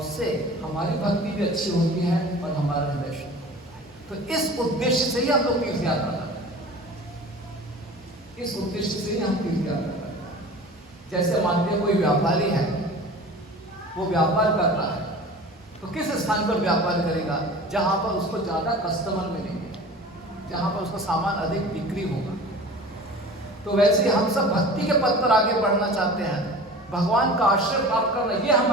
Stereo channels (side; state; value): both; normal; correlation 0.39